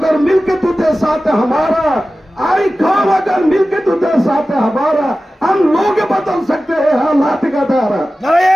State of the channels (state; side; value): normal; both; correlation 0.95